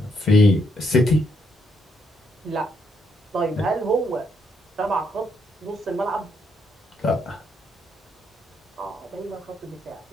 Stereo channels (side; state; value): both; normal; correlation 0.75